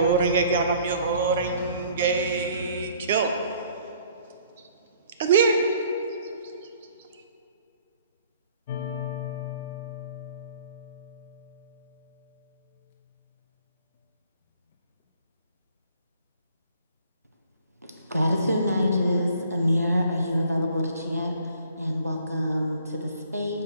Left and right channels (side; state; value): both; inverted; correlation -0.57